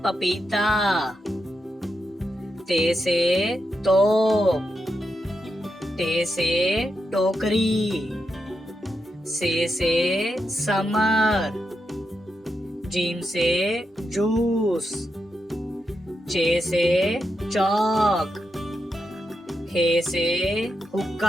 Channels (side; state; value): both; normal; correlation 0.85